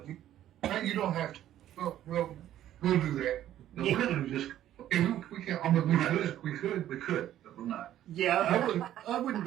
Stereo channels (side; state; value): left; quieter; 12.2 dB